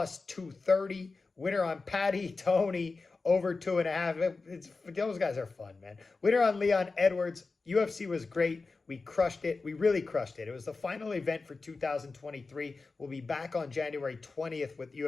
Winner on Patty Tony over 2.5. Those guys are fun, man. Winner on Leon Edwards. UFC was great. We crushed it. We really crushed it. It was the final event for 2023. We'll be back on January 20th with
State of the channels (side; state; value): right; quieter; 4.0 dB